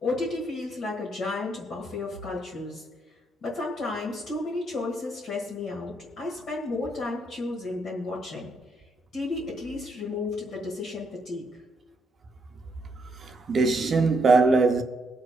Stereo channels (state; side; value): normal; both; correlation 0.76